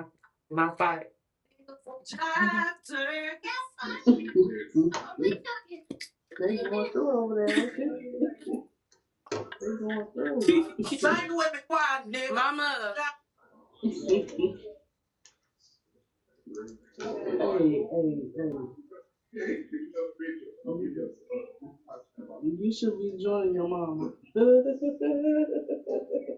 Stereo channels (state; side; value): identical; both; correlation 1.00